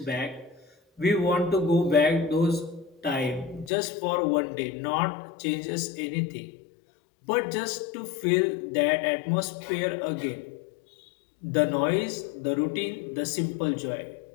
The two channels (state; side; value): drops out; right; at 3.7 s